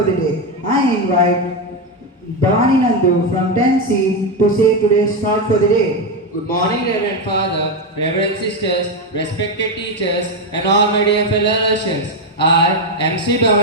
the day. I invite Bhavani Nandu from 10C to say today's thought for the day. Good morning, Reverend Father, Reverend Sisters, respected teachers, and all my dear fellow Russians. I, MC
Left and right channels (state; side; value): normal; both; correlation 0.08